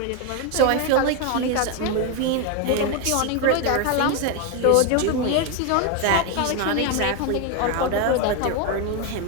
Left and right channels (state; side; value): different; both; correlation 0.01